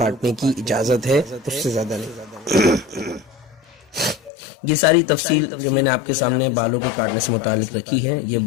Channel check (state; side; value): drops out; right; at 4.3 s